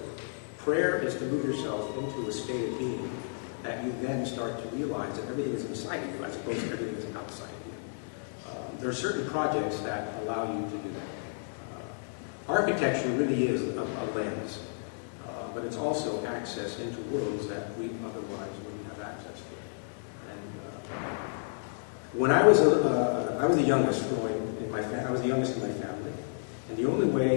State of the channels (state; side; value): silent; right; digital silence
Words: Prayer is to move yourself into a state of being that you then start to realize that everything is inside you as opposed to everything is outside of you. There are certain projects that allow you to do that. Architecture really is a lens, but it's also access into worlds that we otherwise wouldn't have access to. And when I was the youngest growing in my I was the youngest in my family, and the only